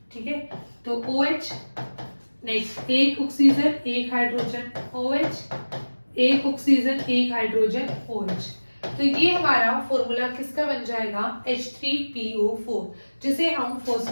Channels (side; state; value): both; inverted; correlation -1.00